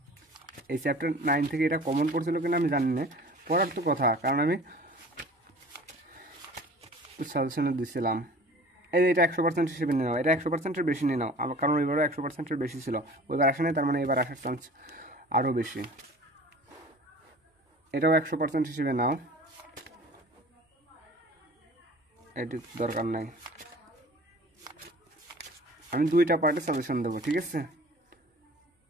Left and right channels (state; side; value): normal; both; correlation 0.44